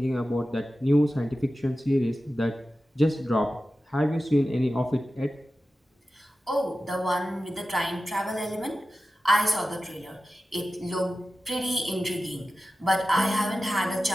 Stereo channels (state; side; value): normal; both; correlation 0.94